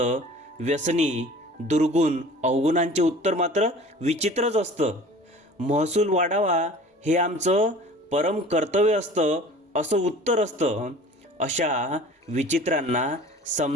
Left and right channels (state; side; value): normal; both; correlation 0.44